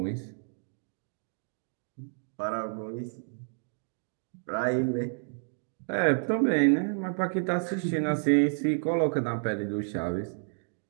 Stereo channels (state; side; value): silent; left; digital silence